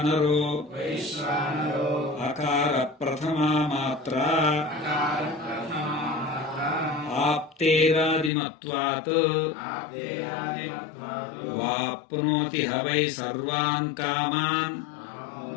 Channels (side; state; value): right; drops out; at 8.3 s